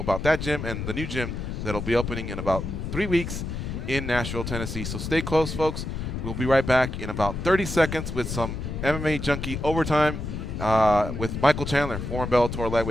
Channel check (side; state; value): left; noise; rumble, 5 dB below the sound